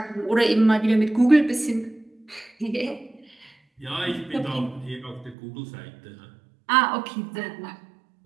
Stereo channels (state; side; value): drops out; left; at 5.4 s